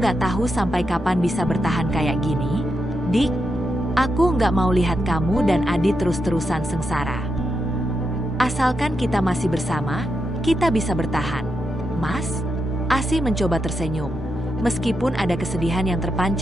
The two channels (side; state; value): both; normal; correlation 0.85